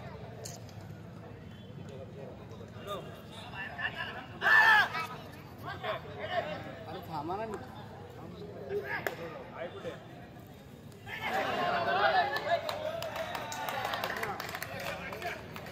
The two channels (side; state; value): both; identical; correlation 1.00